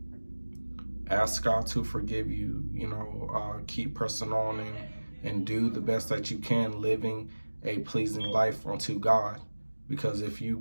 ask God to forgive you, keep pressing on, and do the best that you can, living a pleasing life unto God. Because if you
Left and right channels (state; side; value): inverted; both; correlation -1.00